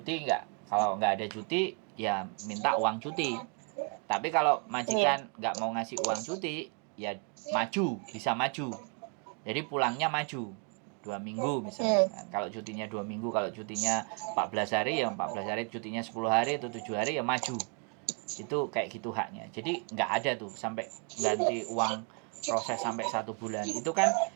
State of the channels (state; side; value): quieter; left; 36.5 dB